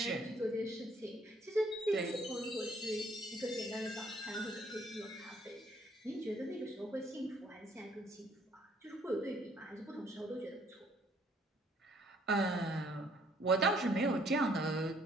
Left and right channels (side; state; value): both; normal; correlation 0.64